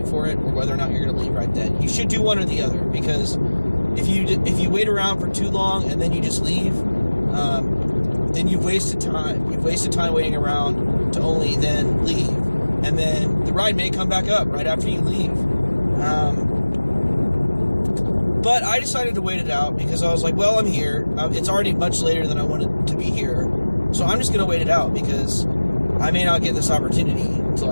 for it, or whether or not you're going to leave right then. You should do one or the other, because if you wait around for too long and then you just leave, then you've wasted time. You've wasted time waiting around to only then leave, and then the ride may come back up right after you leave. But I decided to wait it out because I was like, well, I'm here. It's already much later than I wanted to be here, so I'm just going to wait it out, because I may not get this opportunity to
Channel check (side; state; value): both; inverted; correlation -1.00